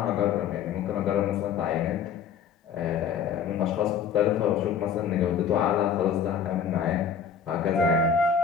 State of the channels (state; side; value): quieter; right; 7.3 dB